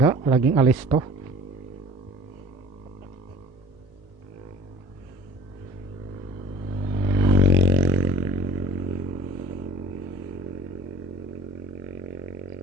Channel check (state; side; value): normal; both; correlation 0.45